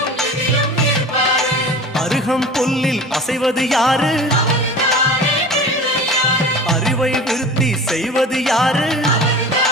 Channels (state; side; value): normal; both; correlation 0.37